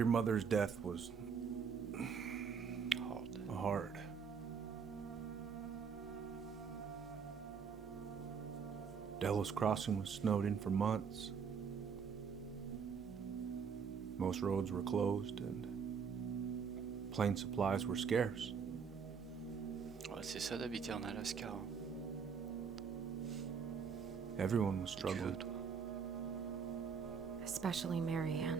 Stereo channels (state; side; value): quieter; left; 6.3 dB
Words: mother's death was hard. Delos Crossing was snowed in for months. Most roads were closed and plane supplies were scarce. Ouais, c'est ça d'habiter en Alaska. Hein. Everyone was struggling. Especially